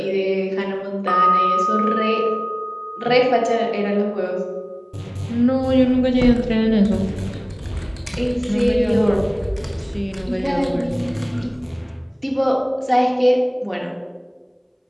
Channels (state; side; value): identical; both; correlation 1.00